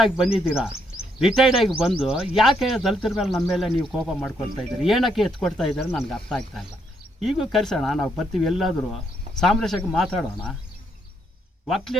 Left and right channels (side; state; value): both; normal; correlation 0.74